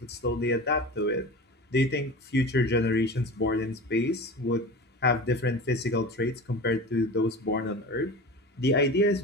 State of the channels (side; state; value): both; normal; correlation 0.32